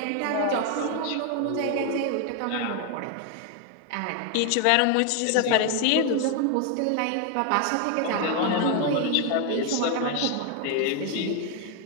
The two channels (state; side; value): different; both; correlation 0.01